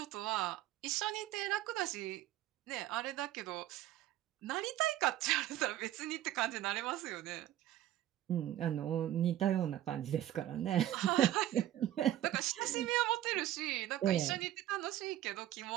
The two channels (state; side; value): quieter; left; 13.1 dB